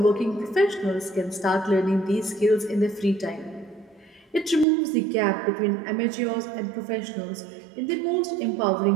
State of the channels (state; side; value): drops out; left; at 4.7 s